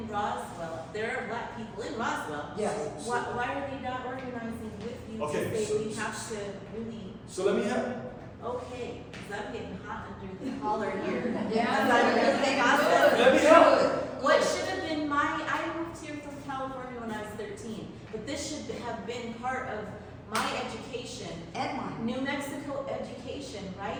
Roswell? There are black people in Roswell. Yes. Why are they not organizing with you Okay, to say so- we have to really, So let me help. okay, because I'm getting hot under the collar here. Yeah, Because I'm really processing. Let me help. What should have been I moved here from California when I was 13, but this should have been part of my education, And mine. New Mexico education,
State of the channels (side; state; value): both; identical; correlation 1.00